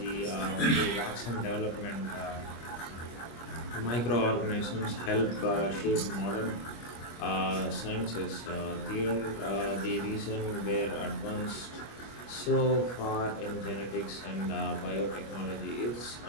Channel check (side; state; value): right; late; 25 ms